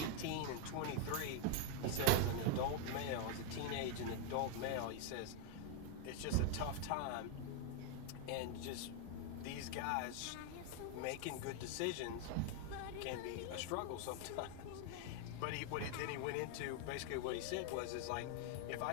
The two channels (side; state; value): both; different; correlation 0.00